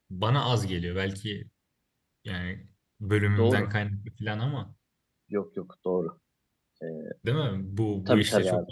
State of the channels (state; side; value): identical; both; correlation 1.00